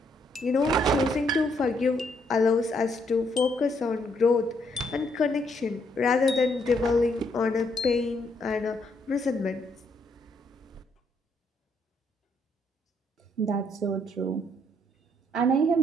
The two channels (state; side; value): normal; both; correlation 0.72